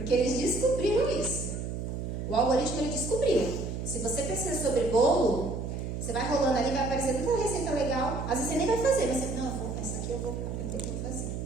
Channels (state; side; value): noise; right; hum, 5 dB below the sound